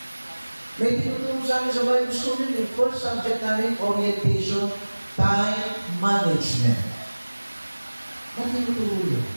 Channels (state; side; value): inverted; both; correlation -1.00